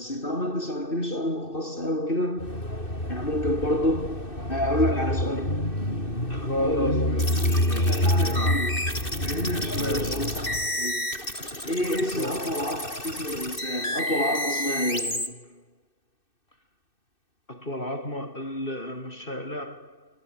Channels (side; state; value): right; late; 2.6 ms